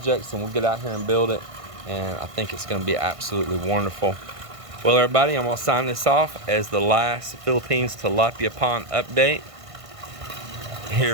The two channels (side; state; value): left; late; 1.5 ms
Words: and we'll get out here and build it, and I think it's going to be absolutely wonderful. Well, everybody, I'm going to sign this off as the last Philippines tilapia pond update